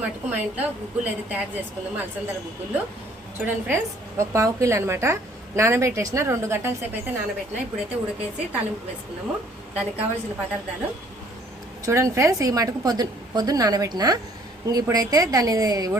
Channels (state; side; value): normal; both; correlation 0.60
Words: మటుకు మా ఇంట్లో గుగ్గులు అయితే తయారు చేసుకుందాము. అలసందల గుగ్గులు చూడండి ఫ్రెండ్స్. ఒక పావు కిలో అనమాట నానబెట్టేసిన, 2 గంటల సేపు అయితే నానబెట్టిన. ఇప్పుడైతే ఉడకేసి తాలింపు వేసుకున్నాము. దానికి కావాల్సిన పదార్థాలు చూడండి ఫ్రెండ్స్. ఈ మటుకు పొద్దున్న నానబెట్టిన. ఇప్పుడైతే దాన్ని